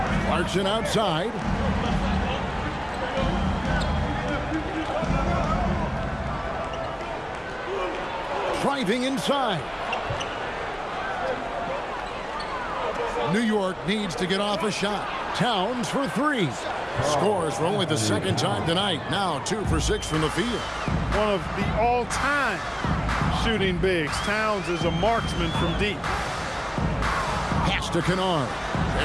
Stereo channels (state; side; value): identical; both; correlation 1.00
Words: Clarkson outside. Driving inside. New York needs to get off a shot. Towns for 3. Scores for only the second time tonight. Now 2 for 6 from the field. One of the all-time shooting bigs. Towns is a marksman from deep. Pass to Kennard.